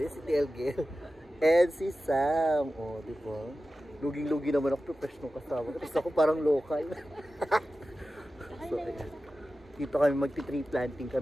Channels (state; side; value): normal; both; correlation 0.94